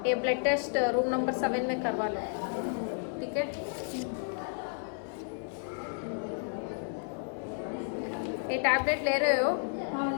ये ब्लड टेस्ट रूम नंबर 7 में करवा लो. ठीक है? ये टैबलेट ले रहे हो? हाँ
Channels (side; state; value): right; silent; 56 dB below the other